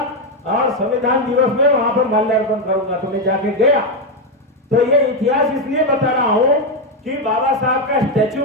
और संविधान दिवस में वहां पर माल्यार्पण करूंगा। तो मैं जाके गया। तो ये इतिहास इसलिए बता रहा हूं कि बाबा साहब का स्टैचू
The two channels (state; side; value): normal; both; correlation 0.06